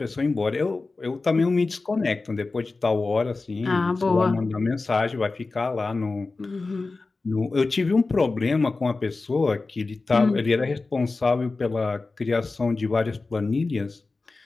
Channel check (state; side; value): quieter; right; 3.7 dB